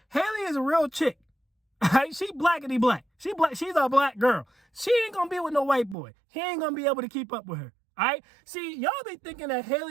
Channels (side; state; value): left; drops out; at 6.0 s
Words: Hailey is a real chick. Right? She blackity black. She's a black girl. She ain't gonna be with no white boy. He ain't gonna be able to keep up with her. All right? See, y'all be thinking that